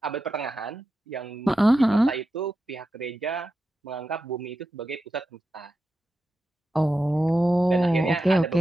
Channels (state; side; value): normal; both; correlation 0.90